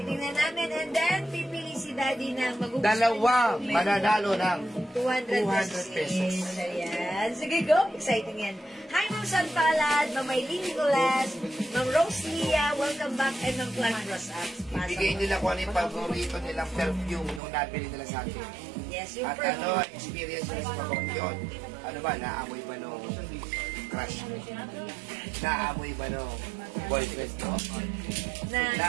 namin, and then pipili si Daddy ng magugustuhan Dalawa yung comment. mananalo ng 200 pesos. Ayan. Sige, go. Exciting yan. Hi, Ma'am San Palad, Ma'am Eileen Nicolas, Ma'am Rose Lia, welcome back, and Ma'am Clark Rosas. Ibigay nila kung ano yung paborito nilang perfume nung nabili nila sa akin. Yes, yung At ano, experience nila sa pabong yun. Ano ba, naamoy ba nung crush mo? Naamoy ba nung boyfriend mo?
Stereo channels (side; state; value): left; drops out; at 17.4 s